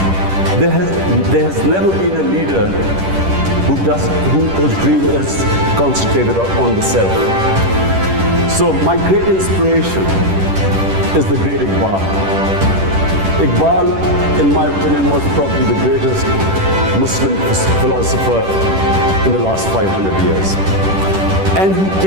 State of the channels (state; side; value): late; left; 10 ms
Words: There has never been a leader whose dream is concentrated on the self. So my great inspiration is the great Iqbal. Iqbal, in my opinion, was probably the greatest Muslim philosopher in the last 500 years. And he